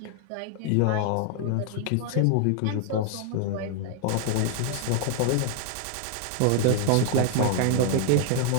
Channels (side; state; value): both; different; correlation 0.00